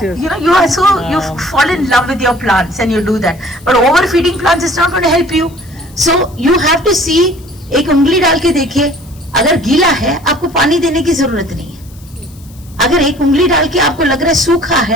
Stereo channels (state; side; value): noise; left; hiss, 26 dB below the sound